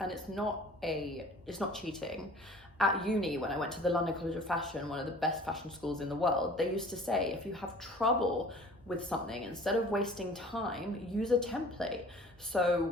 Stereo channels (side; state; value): both; normal; correlation 0.47